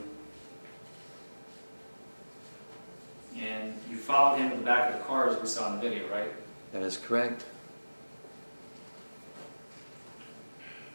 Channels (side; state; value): both; inverted; correlation -1.00